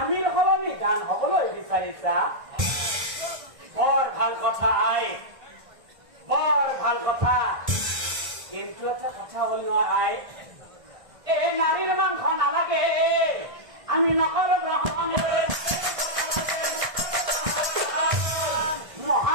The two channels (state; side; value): late; left; 1.6 ms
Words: সলনি দান হবলৈ বিচাৰিছা বৰ ভাল কথা আই বৰ ভাল কথা কিন্তু এটা কথা হল নহয় আই এই নাৰীৰ মাংস নালাগে আমি নকৰো গ্ৰহণ